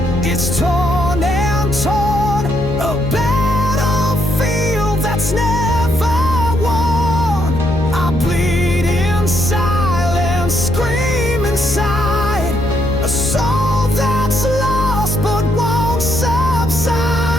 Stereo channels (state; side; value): noise; left; hum, 7 dB below the sound